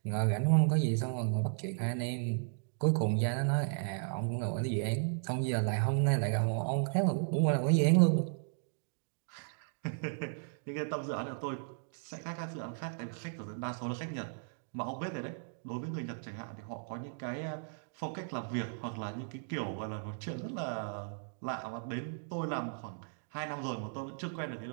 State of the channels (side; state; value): left; silent; digital silence